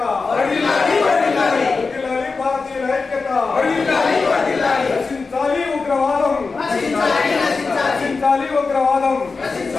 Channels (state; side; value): quieter; right; 4.3 dB